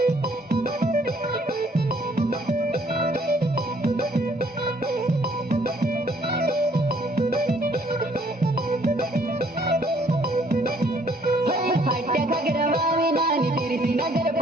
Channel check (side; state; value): both; normal; correlation 0.63